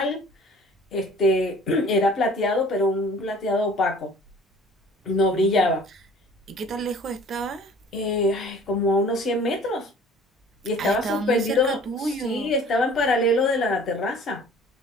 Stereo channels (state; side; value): normal; both; correlation 0.49